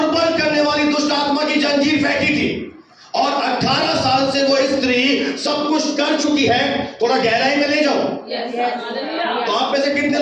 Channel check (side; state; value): both; identical; correlation 1.00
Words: करने वाली दुष्ट आत्मा की जंजीर फेंकी थी। और 18 साल से वो स्त्री सब कुछ कर चुकी है। थोड़ा गहराई में ले जाओ। तो आप में से कितने